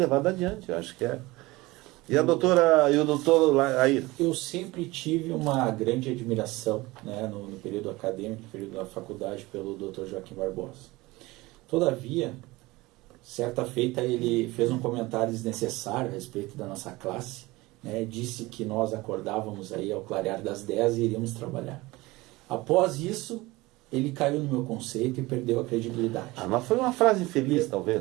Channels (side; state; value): left; quieter; 21.0 dB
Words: adiante, eu acho que é. E a doutora, e o doutor aí? Eu sempre tive uma grande admiração, né, no período acadêmico, no período da faculdade, pelo Dr. Joaquim Barbosa. Todavia, certa feita ele fez um comentário desnecessário a respeito da nossa classe, né, disse que nós acordávamos aí ao clarear das 10 e iríamos trabalhar. Após isso, ele caiu no meu conceito e perdeu a credibilidade. Mas foi uma frase infeliz,